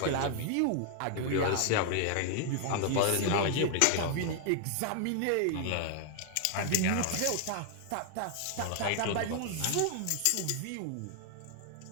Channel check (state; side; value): different; both; correlation 0.00